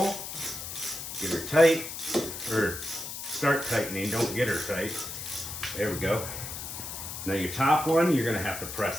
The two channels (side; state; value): left; noise; hiss, 8 dB below the sound